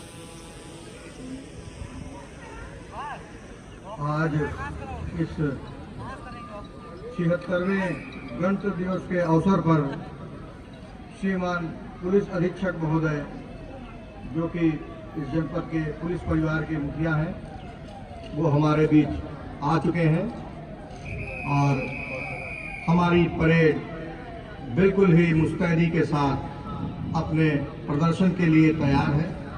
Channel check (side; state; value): both; identical; correlation 1.00